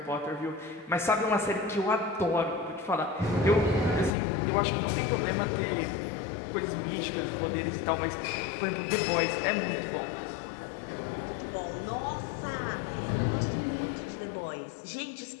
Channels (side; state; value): right; drops out; at 4.1 s